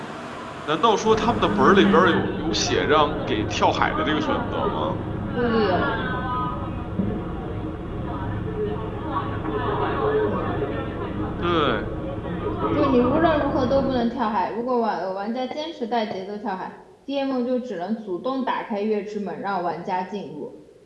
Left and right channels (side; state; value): both; identical; correlation 1.00